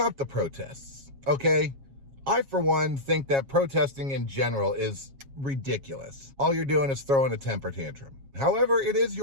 the protests, okay? I, for one, think that protesting in general is ridiculous. All you're doing is throwing a temper tantrum. However, it is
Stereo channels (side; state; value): left; late; 7.3 ms